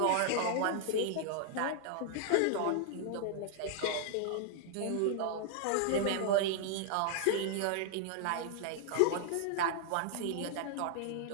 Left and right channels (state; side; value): different; both; correlation -0.01